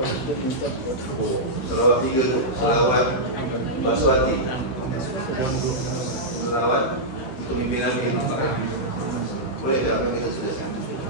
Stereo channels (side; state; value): right; late; 16 ms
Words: kita minta. Oh, selawat 3 tu. Selawat Baswati. Selawat untuk mimpi Nabi. Boleh tak apa kita tuliskan?